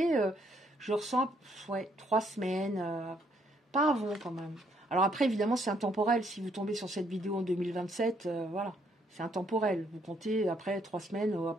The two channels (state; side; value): normal; both; correlation 0.70